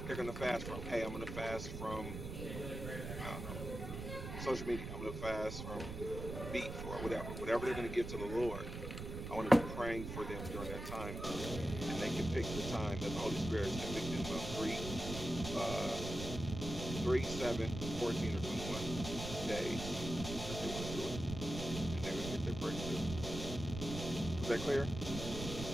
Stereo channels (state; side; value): noise; right; rumble, 7 dB below the sound